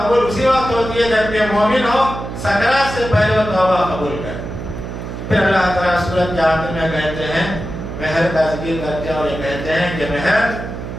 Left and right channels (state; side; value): noise; right; hum, 8 dB below the sound